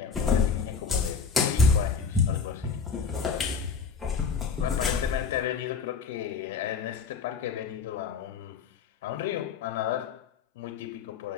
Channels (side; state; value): right; quieter; 5.7 dB